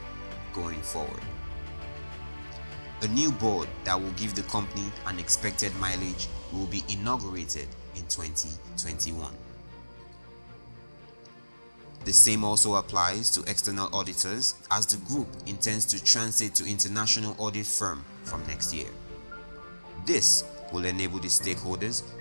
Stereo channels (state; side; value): inverted; both; correlation -1.00